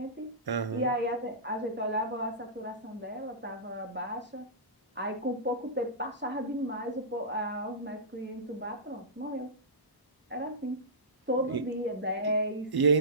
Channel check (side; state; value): both; normal; correlation -0.19